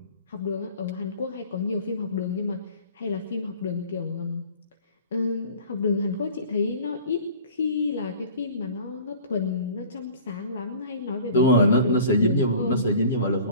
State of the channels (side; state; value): both; inverted; correlation -0.45